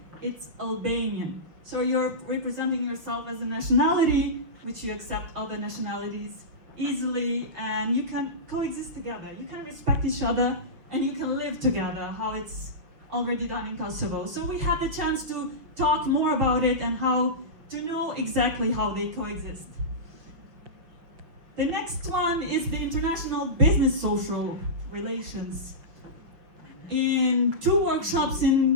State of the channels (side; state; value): left; late; 6.1 ms